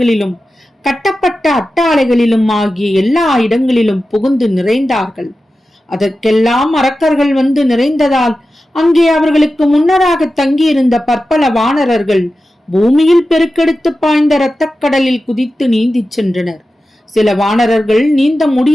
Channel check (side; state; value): both; normal; correlation 0.93